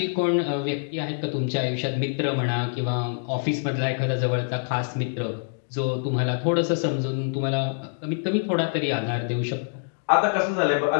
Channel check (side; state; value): right; silent; digital silence